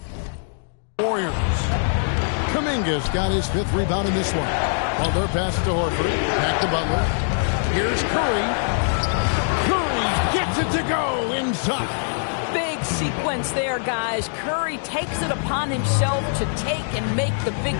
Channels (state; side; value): silent; right; digital silence